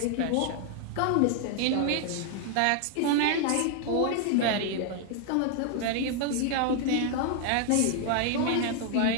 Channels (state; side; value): different; both; correlation 0.00